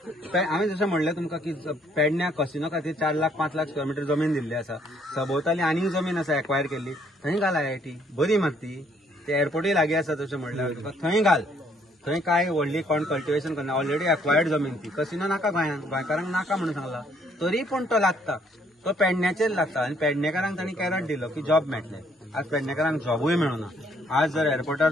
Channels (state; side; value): normal; both; correlation 0.66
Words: हांवें जशें म्हणलें तुमकां की पेडण्या कसिनो खातीर 4 लाख 5 लाख स्क्वेअर मीटर जमीन दिल्ली आसा. सभोवताली आनीक जमीन आसा एक्वायर केल्ली, थंय घाल IIT. बरी मात ती, ते एअरपोर्टूय लागीं आसा तशें म्हणल्यार तुका थंय घाल. थंय काय व्हडली कोण कल्टिवेशन करना, ऑलरेडी एक्वायर्ड जमीन ती. कसिनो नाका गोंयांत, गोंयकारांक नाका म्हणून सांगला, तरी पूण तो लागता. तो पेडण्याचेर लागता आनी पेडणेकारांक तांणी कॅरट दिलो की जॉब मेळटले. आज पेडणेकारांक जॉबूय मेळना. आज जर एअरपोर्टार